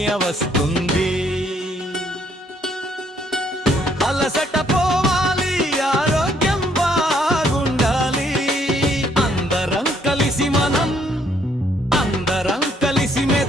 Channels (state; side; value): normal; both; correlation 0.68